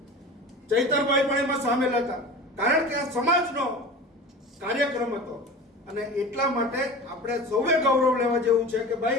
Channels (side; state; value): both; normal; correlation 0.34